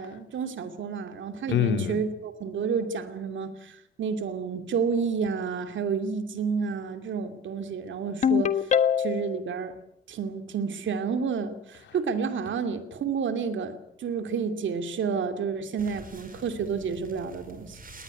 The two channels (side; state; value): both; normal; correlation 0.33